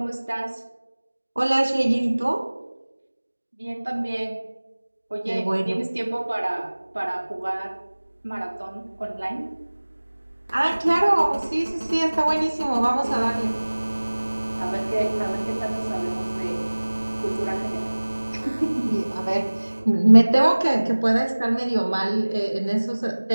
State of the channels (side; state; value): both; inverted; correlation -1.00